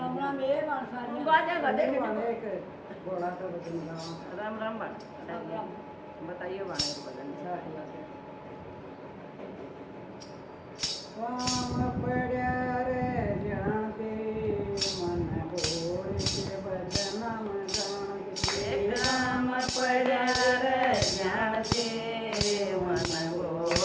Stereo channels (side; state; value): both; identical; correlation 1.00